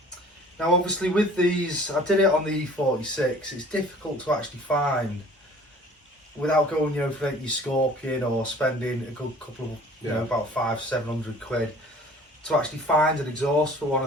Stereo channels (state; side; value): normal; both; correlation 0.49